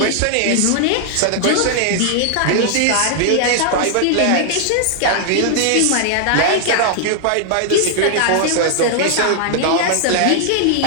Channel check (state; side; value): different; both; correlation 0.00